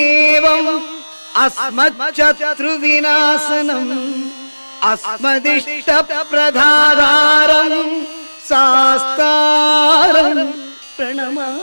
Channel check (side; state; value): both; inverted; correlation -1.00